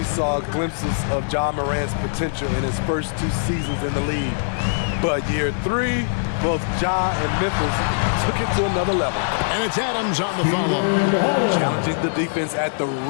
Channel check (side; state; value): right; silent; digital silence